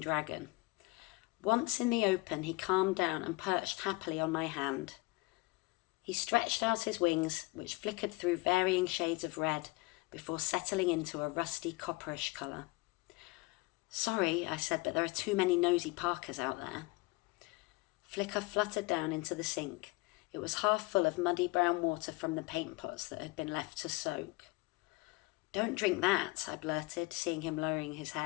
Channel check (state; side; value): quieter; right; 23.5 dB